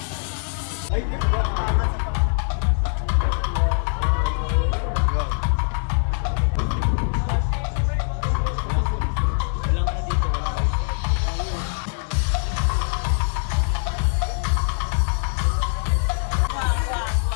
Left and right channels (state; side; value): silent; right; 64 dB below the other